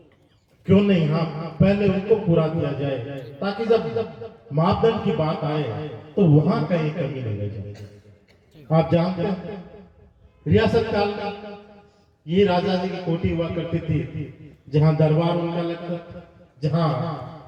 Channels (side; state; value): both; identical; correlation 1.00